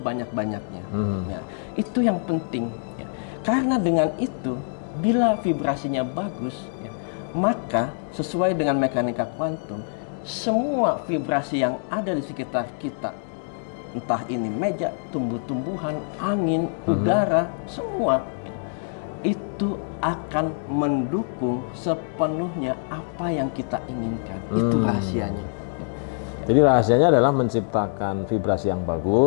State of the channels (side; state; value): right; silent; digital silence